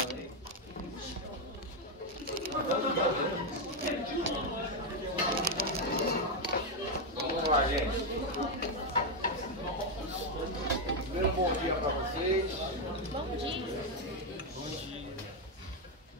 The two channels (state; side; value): normal; both; correlation 0.04